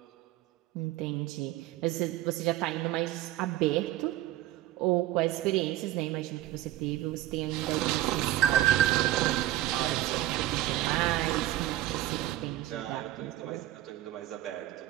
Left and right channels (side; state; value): left; quieter; 14.4 dB